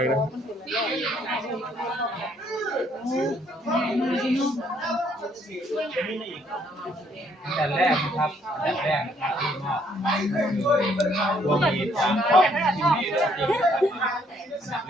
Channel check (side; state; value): both; normal; correlation 0.67